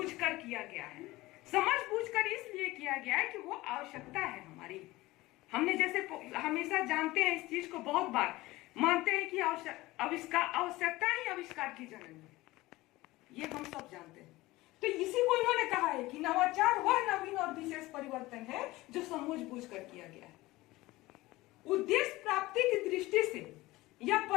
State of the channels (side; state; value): right; quieter; 19.2 dB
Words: कर किया गया है। समझ बूझकर इसलिए किया गया है कि वो आवश्यकता है हमारी। हमने जैसे हमेशा जानते हैं, इस चीज को बहुत बार मानते हैं कि आवश्यकता ही आविष्कार की जननी है, ये हम सब जानते हैं। तो इसी को इन्होंने कहा है कि नवाचार वह नवीन और विशेष परिवर्तन है जो समझ बूझकर किया गया है। उद्देश्य प्राप्ति की दृष्टि से यह